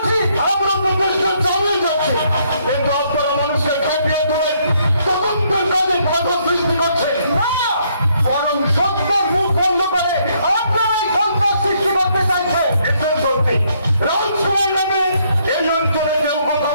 আমরা তো দেশকে চালিয়ে যাচ্ছে, কিন্তু আপনারা মানুষকে খাটিয়ে তুলে তদন্তের কাজে বাধা সৃষ্টি করছে না, বরং সত্যের মুখ বন্ধ করে আপনারাই সন্ত্রাস সৃষ্টি করতে চাইছে। এসব সত্যি রাজকুমার নামে এই অঞ্চলে কেউ কোথাও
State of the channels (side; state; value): both; inverted; correlation -0.70